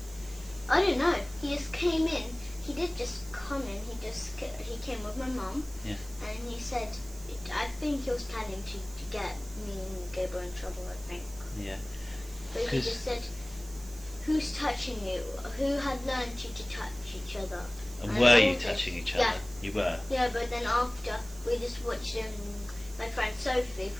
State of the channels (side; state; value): right; noise; hiss, 18 dB below the sound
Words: I don't know. He just came in. He did just come in. He came with my mum. Yeah. And he said, I think he was planning to get me and Gabriel in trouble, I think. Yeah. But he 'Cause- just said, "Who's touching you? Who had learned you to touch each other?" And I were told you him. touching each other? Yeah. You were. Yeah, but then after we just watched my friend Sophie